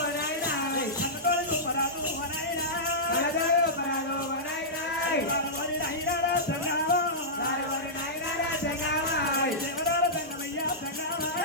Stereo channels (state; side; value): normal; both; correlation -0.13